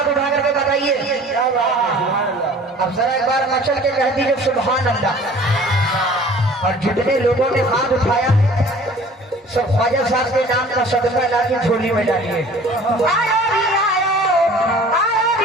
उठा करके बताइए। अब जरा एक बार मचल के कह दीजिए सुभान अल्लाह। और जितने लोगों ने हाथ उठाया सब ख्वाजा साहब के नाम का सदका ला के झोली में डालिए।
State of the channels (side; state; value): both; normal; correlation 0.48